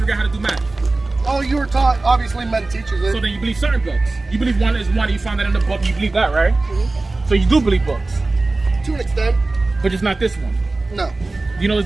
out how to do math? Oh, you were taught. Obviously, men teaches it. So then you believe certain books. You believe one is one, you found that in the book, you believe that, right? So you do believe books. To an extent. But just not this one. No. Do you know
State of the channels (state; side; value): quieter; left; 3.2 dB